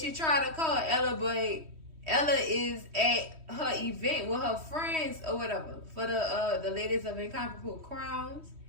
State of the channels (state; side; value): late; left; 3.1 ms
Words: she tried to call Ella, but Ella is at her event with her friends or whatever for the ladies of Incomparable Crowns.